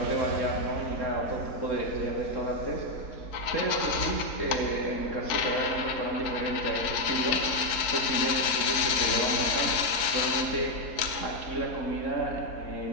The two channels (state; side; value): late; right; 4.5 ms